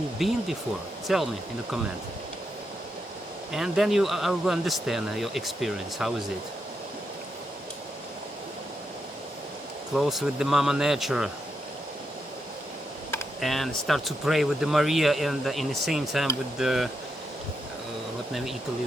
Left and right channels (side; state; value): both; normal; correlation 0.83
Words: been before? Tell me in the comment. And then I will understand your experience. How is it? Close with the Mama Nature. And start to pray with the Maria, and in the same time with the what name Italy